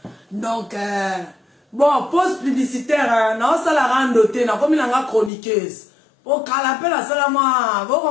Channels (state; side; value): drops out; right; at 5.3 s